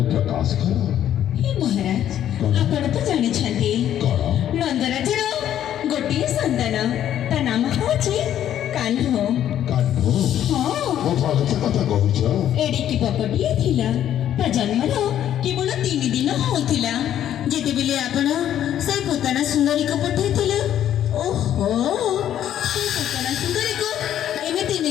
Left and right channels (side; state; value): right; quieter; 10.9 dB